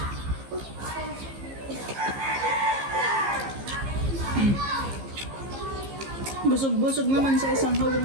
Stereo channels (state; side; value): late; left; 15 ms